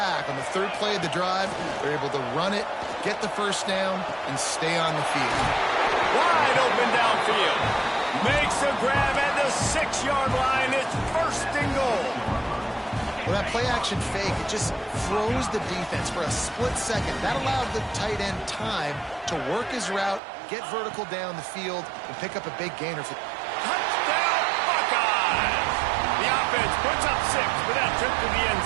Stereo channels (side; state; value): left; drops out; at 20.2 s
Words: on the 3rd play of the drive, they're able to run it, get the 1st down, and stay on the field. Wide open downfield. Makes a grab at the 6-yard line. It's 1st and goal. Well, that play-action fake, it just froze the defense for a split second. That allowed the tight end time to work his route, get vertical down the field, and pick up a big gainer. Touchdown, Buckeyes! The offense puts up 6 with that trip to the end